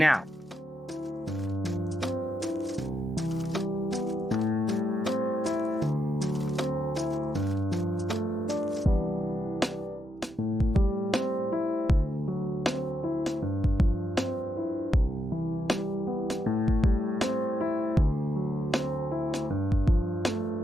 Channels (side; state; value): both; normal; correlation 0.81